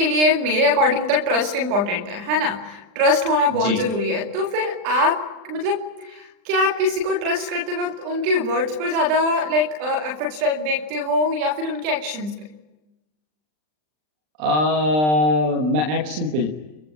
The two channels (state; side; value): late; left; 39 ms